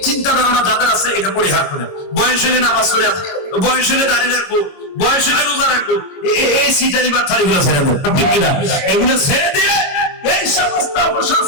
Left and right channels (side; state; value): right; late; 22 ms